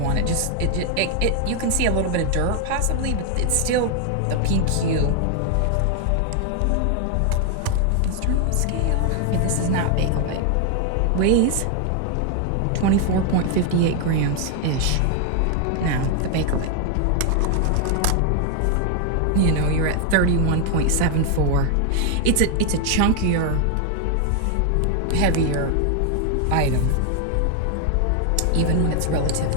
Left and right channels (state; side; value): different; both; correlation 0.00